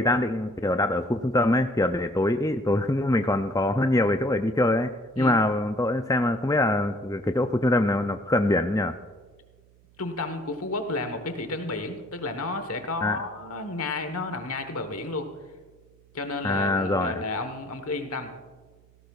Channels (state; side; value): noise; right; hum, 29 dB below the sound